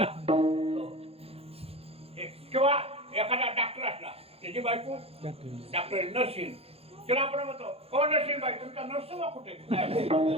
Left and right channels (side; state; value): left; late; 0.29 ms